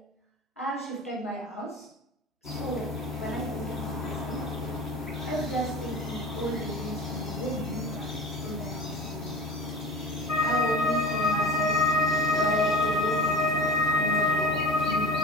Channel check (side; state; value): both; normal; correlation 0.34